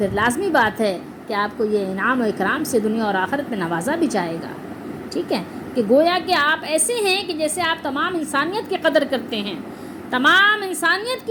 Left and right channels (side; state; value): both; identical; correlation 1.00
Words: لازمی بات ہے کہ آپ کو یہ انعام و اکرام سے دنیا اور آخرت میں نوازا بھی جائے گا، ٹھیک ہے، کہ گویا کہ آپ ایسے ہیں کہ جیسے آپ تمام انسانیت کی قدر کرتے ہیں، تمام انسانیت